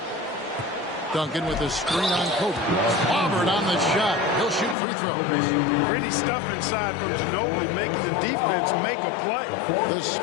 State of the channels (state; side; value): drops out; right; at 4.8 s